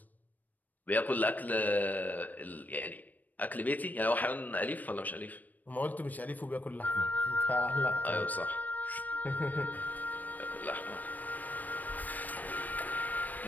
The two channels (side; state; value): right; late; 0.082 ms